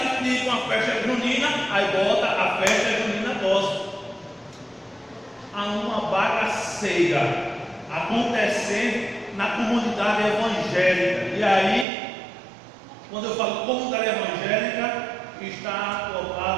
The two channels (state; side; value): drops out; left; at 11.9 s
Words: de ir para uma festa junina, aí bota a festa junina gospel. Há uma bagaceira acontecendo na comunidade evangélica. E aí, quando eu falo comunidade evangélica, está